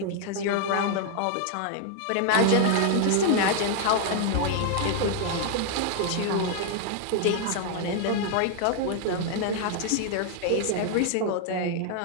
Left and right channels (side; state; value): both; different; correlation 0.00